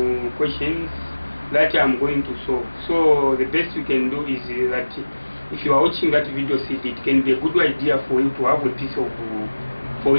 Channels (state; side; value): inverted; both; correlation -1.00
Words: questions that I'm going to solve. So the best you can do is that if you are watching that video CD, it can be a good idea for you to have a piece of